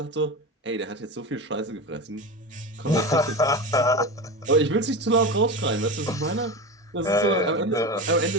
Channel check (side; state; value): both; normal; correlation 0.24